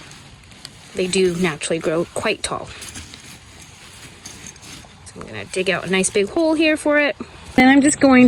they do naturally grow quite tall. So I'm gonna dig out a nice big hole here for it. And I'm just going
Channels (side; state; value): both; identical; correlation 1.00